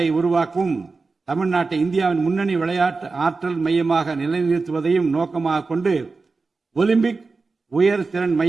உருவாக்கவும் தமிழ்நாட்டை இந்தியாவின் முன்னணி விளையாட்டு ஆற்றல் மையமாக நிலைநிறுத்துவதையும் நோக்கமாக கொண்டு ஒலிம்பிக் உயர் திறன்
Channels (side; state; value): left; quieter; 4.1 dB